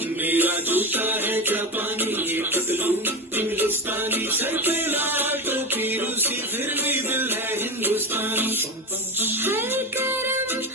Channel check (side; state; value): both; normal; correlation 0.20